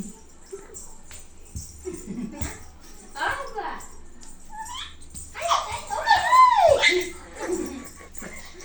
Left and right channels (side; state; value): both; identical; correlation 1.00